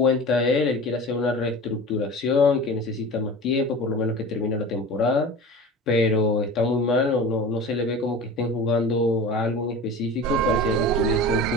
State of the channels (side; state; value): both; normal; correlation 0.35